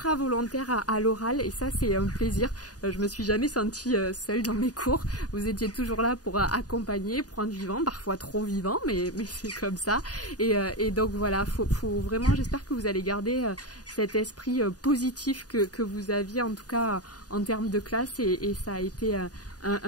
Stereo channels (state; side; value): late; right; 0.68 ms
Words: volontaire à l'oral et ça c'est un plaisir. Je me suis jamais sentie seule dans mes cours. Vous étiez toujours là pour accompagner, pour rendre vivant, parfois trop vivant, mais c'est comme ça. Et donc voilà, faut vraiment, j'espère que vous allez garder cet esprit positif que vous aviez en tout cas en termes de classe et ça a été